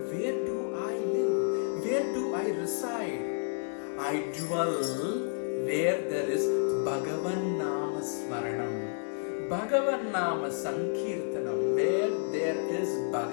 where do I live? Where do I reside? I dwell where there is Bhagavan Nama Smaranam, Bhagavan Nama Sankirtanam. Where there is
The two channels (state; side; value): silent; right; digital silence